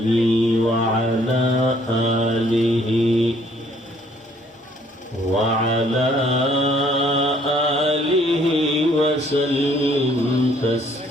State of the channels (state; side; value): normal; both; correlation 0.63